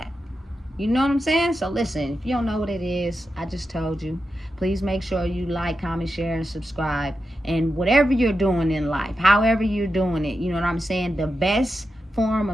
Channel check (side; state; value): both; normal; correlation 0.89